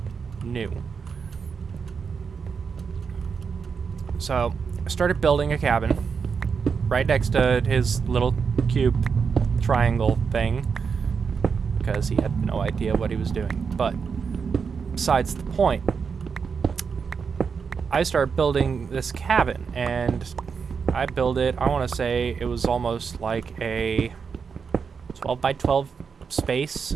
new. So, I started building a cabin right next to his little cube triangle thing, because he had no idea what he was doing. But besides the point, I started building this cabin, and I built it, I want to say it was almost like a 12 by 12 space,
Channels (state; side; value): quieter; left; 5.9 dB